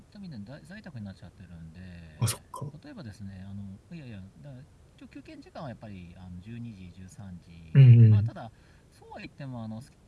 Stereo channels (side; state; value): both; identical; correlation 1.00